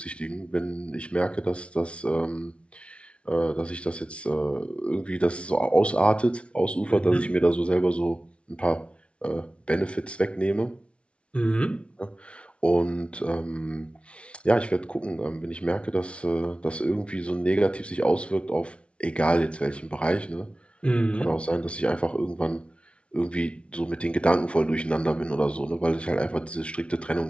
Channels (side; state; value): right; late; 0.060 ms